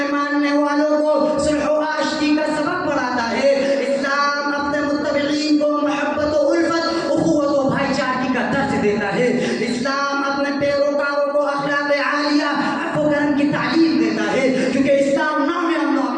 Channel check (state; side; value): identical; both; correlation 1.00